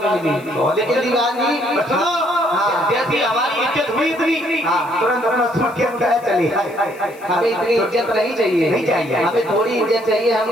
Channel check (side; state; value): left; noise; hiss, 25 dB below the sound